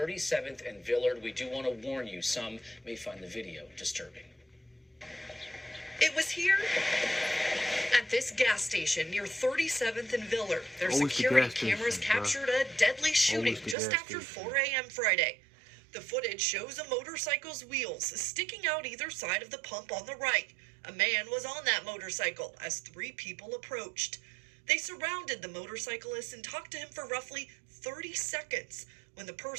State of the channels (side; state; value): left; drops out; at 13.8 s